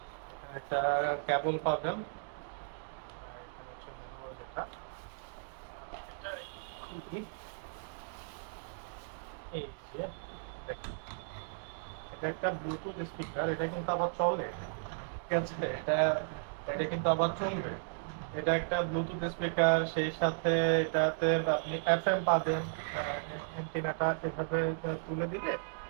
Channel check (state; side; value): silent; left; digital silence